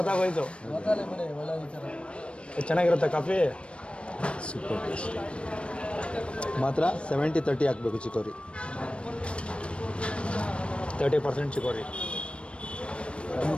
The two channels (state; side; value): late; right; 0.059 ms